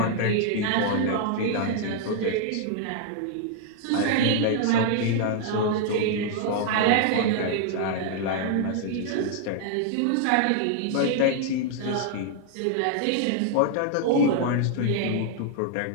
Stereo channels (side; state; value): both; different; correlation 0.00